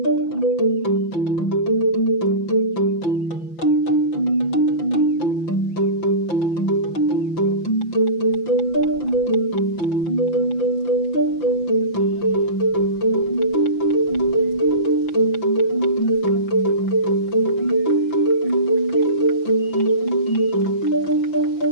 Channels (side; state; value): right; late; 5.9 ms